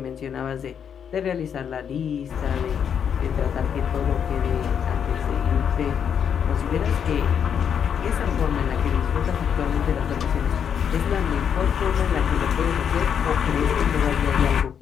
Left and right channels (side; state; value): right; quieter; 7.9 dB